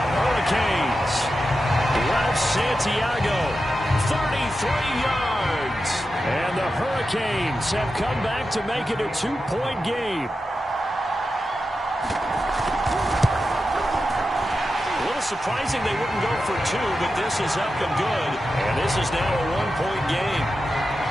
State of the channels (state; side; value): normal; both; correlation 0.90